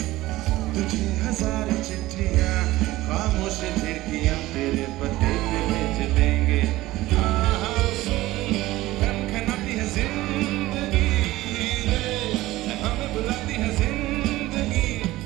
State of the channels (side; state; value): left; quieter; 17.4 dB